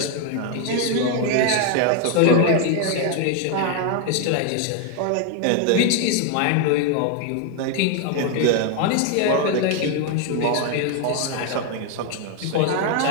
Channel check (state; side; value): different; both; correlation 0.01